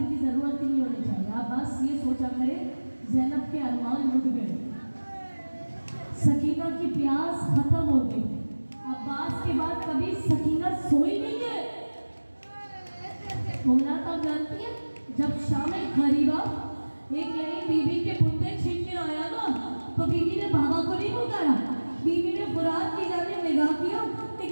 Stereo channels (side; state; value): both; inverted; correlation -1.00